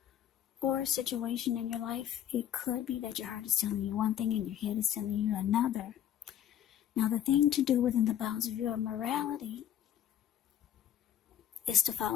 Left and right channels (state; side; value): quieter; right; 10.5 dB